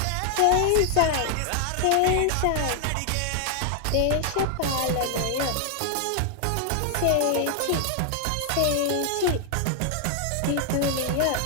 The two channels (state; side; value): different; both; correlation 0.00